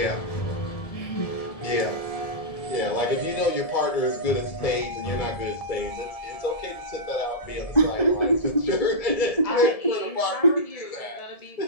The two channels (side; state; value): right; late; 1.7 ms